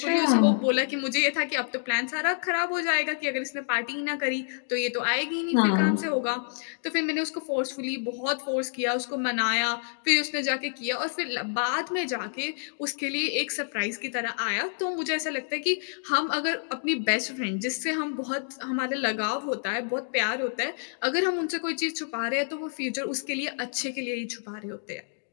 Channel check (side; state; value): right; silent; digital silence